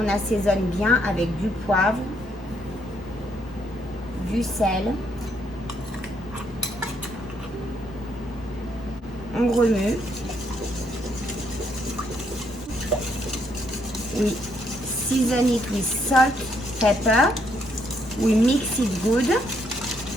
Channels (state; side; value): normal; both; correlation 0.72